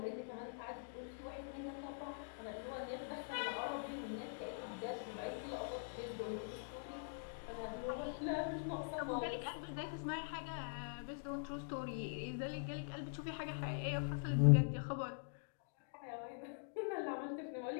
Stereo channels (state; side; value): silent; right; digital silence